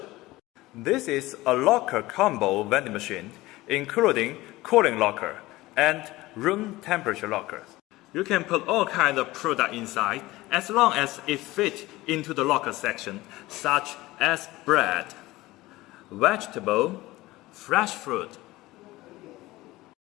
This is a locker combo vending machine, including cooling locker and room temperature lockers. You can put all kinds of product inside as long as it fits into the locker section, such as bread, vegetable, fresh fruit.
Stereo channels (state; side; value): quieter; right; 18.8 dB